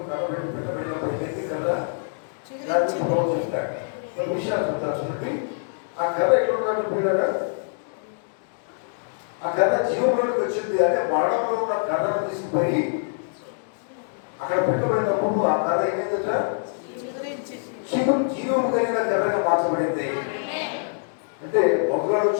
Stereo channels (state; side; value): silent; right; digital silence